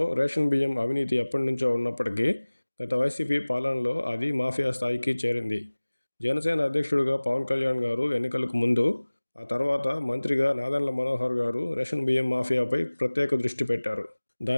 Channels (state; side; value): inverted; both; correlation -1.00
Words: రేషన్ బియ్యం అవినీతి ఎప్పటినుంచో ఉన్నప్పటికీ గత వైసీపీ పాలనలో అది మాఫియా స్థాయికి చేరింది. జనసేన అధ్యక్షుడిగా పవన్ కళ్యాణ్ గారు ఎన్నికలకు ముందు, ఆ తర్వాత మంత్రిగా నాదెండ్ల మనోహర్ గారు రేషన్ బియ్యం మాఫియాపై ప్రత్యేక దృష్టి పెట్టారు.